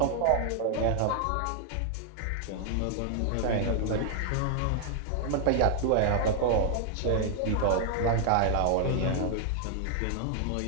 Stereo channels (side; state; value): both; different; correlation 0.00